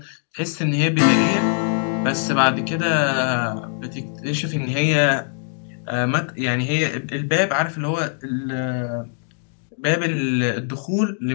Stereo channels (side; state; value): right; silent; digital silence